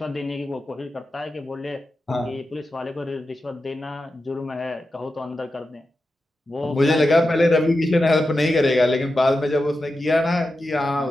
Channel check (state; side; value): normal; both; correlation 0.91